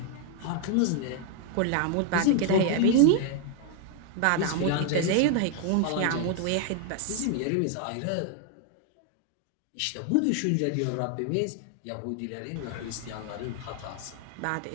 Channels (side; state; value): both; different; correlation 0.00